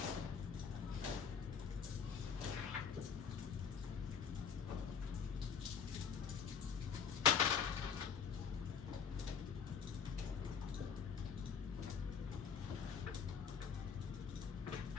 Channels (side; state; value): right; quieter; 6.8 dB